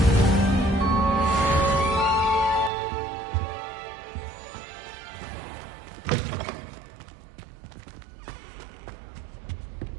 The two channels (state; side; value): drops out; left; at 2.7 s